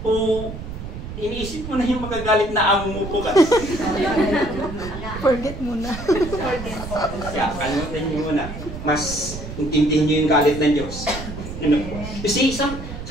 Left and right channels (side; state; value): right; noise; rumble, 9 dB below the sound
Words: O iniisip mo na yung magagalit na amo mo po ka? Forget muna. Kaya, kalimutan niyo muna. Mas intindihin niyo yung galit ng Diyos. You know? You see,